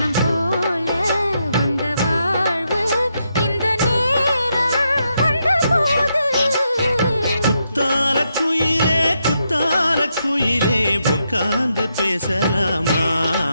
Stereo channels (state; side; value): inverted; both; correlation -0.81